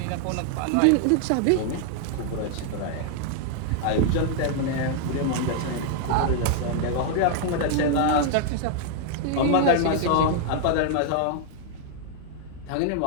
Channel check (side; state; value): both; different; correlation 0.00